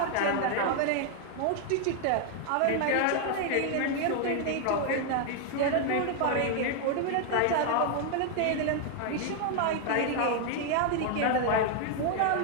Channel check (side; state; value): both; different; correlation 0.00